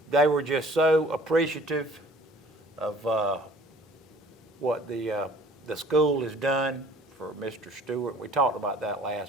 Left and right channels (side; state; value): both; normal; correlation 0.52